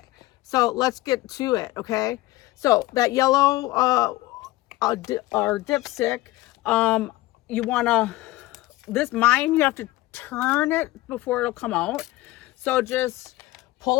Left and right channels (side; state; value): right; quieter; 18.1 dB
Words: so let's get to it. Okay, so that yellow or dipstick, you want to, mine, you have to turn it before it'll come out. So just